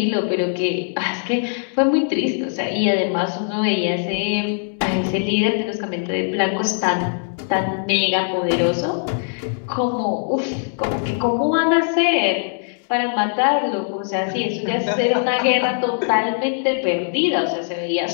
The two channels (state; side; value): silent; right; digital silence